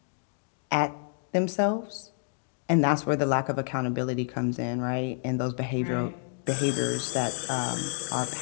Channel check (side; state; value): right; silent; digital silence